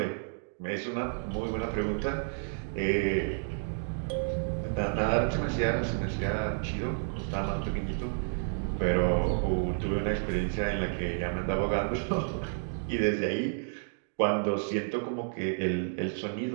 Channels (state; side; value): silent; left; digital silence